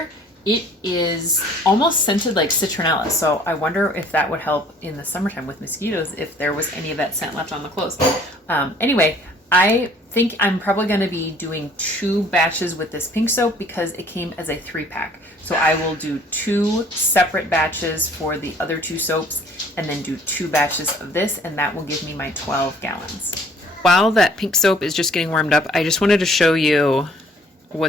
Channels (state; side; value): normal; both; correlation 0.56